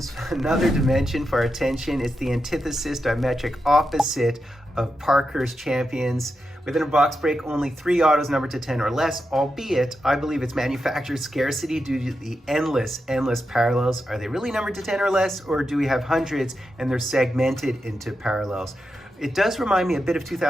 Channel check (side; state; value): both; normal; correlation 0.87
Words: Another dimension for our attention. It's the antithesis, diametric opposite of Parker's Champions. Within a box break, only 3 autos numbered to 10 or less, albeit I believe it's manufacturer scarcity due to the endless parallels. Are they really numbered to 10 or less, or do we have hundreds and they're segmented into parallels? It does remind me a bit of